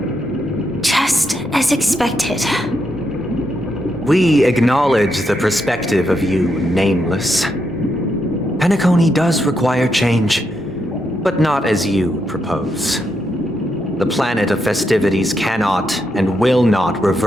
Just as expected. We acknowledge the perspective of you, Nameless. Penacony does require change, but not as you propose. The planet of festivities cannot and will not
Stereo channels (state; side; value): normal; both; correlation 0.81